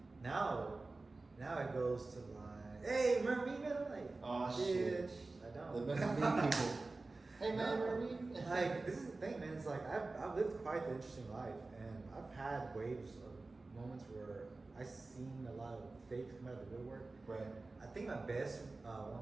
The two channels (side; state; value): left; quieter; 3.4 dB